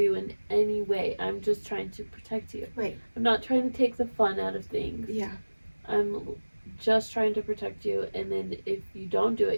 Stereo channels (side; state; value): both; inverted; correlation -1.00